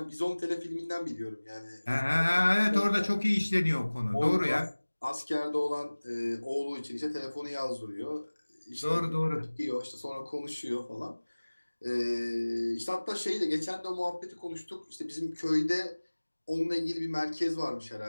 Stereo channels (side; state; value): both; inverted; correlation -1.00